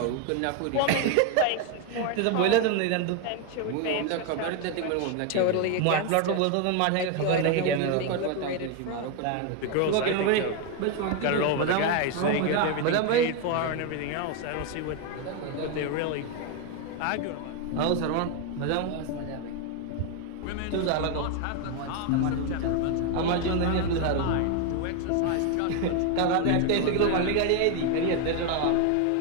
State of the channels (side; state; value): both; different; correlation 0.01